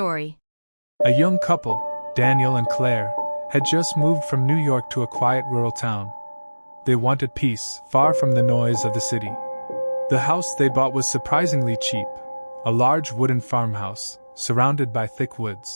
A young couple, Daniel and Claire, had just moved from New York to a quiet rural town. They wanted peace, far from the noise of the city. The house they bought was surprisingly cheap, a large wooden farmhouse, surrounded by thick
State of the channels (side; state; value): both; inverted; correlation -1.00